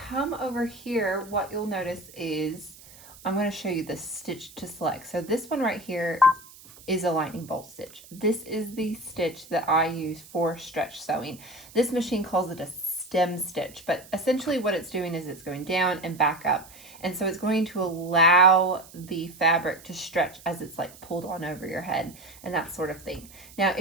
come over here, what you'll notice is I'm going to show you the stitch to select. So this one right here is a lightning bolt stitch. This is the stitch that I use for stretch sewing. This machine calls it a stem stitch, but essentially what it's doing is it's going down and back up. And so it's going to allow the fabric to stretch as it's like pulled on over your head and that sort of thing. Now,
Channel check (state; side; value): noise; right; hiss, 21 dB below the sound